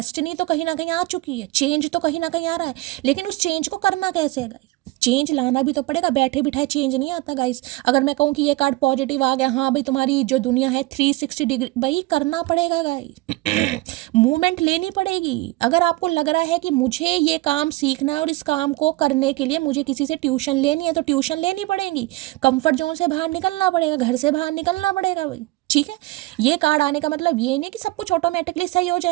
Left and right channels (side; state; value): left; quieter; 20.4 dB